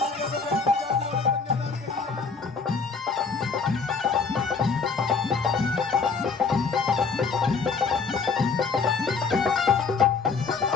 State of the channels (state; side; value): quieter; right; 4.9 dB